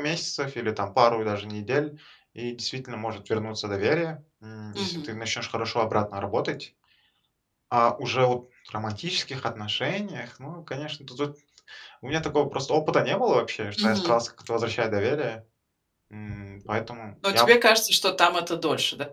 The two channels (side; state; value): both; identical; correlation 1.00